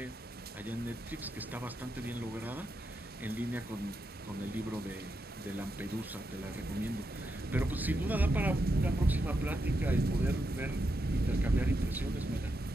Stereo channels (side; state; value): both; normal; correlation 0.85